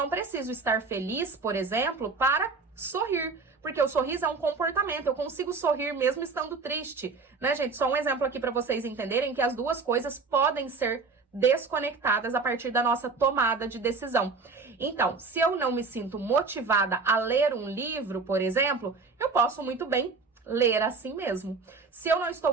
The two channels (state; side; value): quieter; left; 4.3 dB